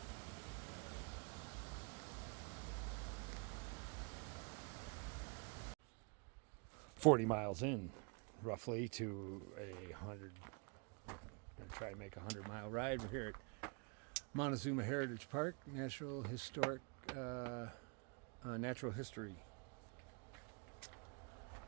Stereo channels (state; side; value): quieter; left; 34.9 dB